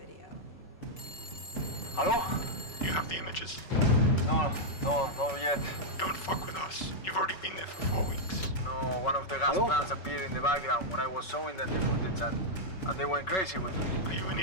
Hello? You have the images? No yet. Don't fuck with us. You've already been there for 4 weeks. No, one of the gas plants appeared in the background when I was showing them the footage and they went crazy with me. Are you an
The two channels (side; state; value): right; late; 5.3 ms